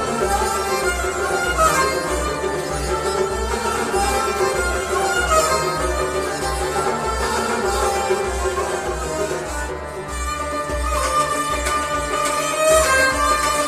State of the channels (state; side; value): identical; both; correlation 1.00